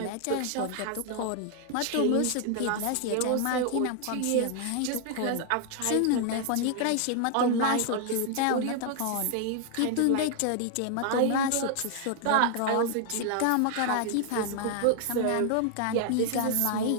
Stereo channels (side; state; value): both; different; correlation 0.00